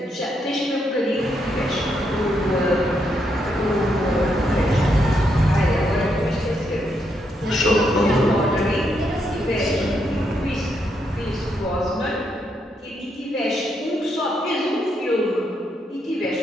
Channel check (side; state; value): both; normal; correlation 0.79